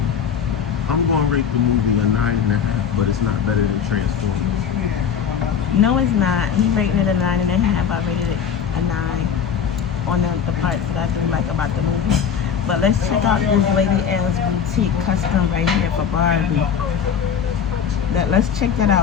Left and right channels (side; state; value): right; quieter; 7.6 dB